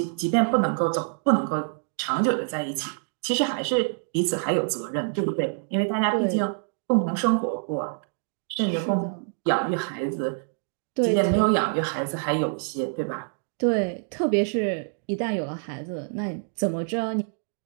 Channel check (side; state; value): left; silent; digital silence